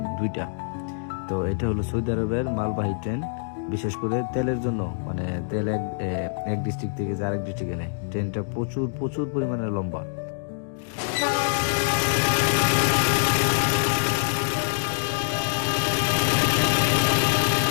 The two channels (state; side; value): silent; right; digital silence